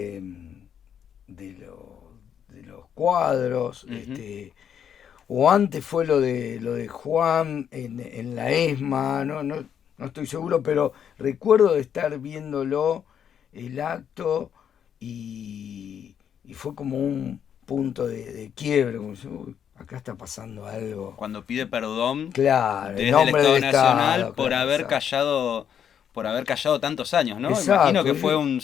los cuadros, o antes fue lo de Juan en la ESMA, no estoy seguro, pero recuerdo de estar viéndolo, el acto, y fue como un punto de quiebre, como si, acá está pasando algo. Cuando pide perdón, claro, desde el Estado Nacional por haber callado tantos años, ¿no? Exacto. Imagino que fue un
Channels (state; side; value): quieter; right; 8.5 dB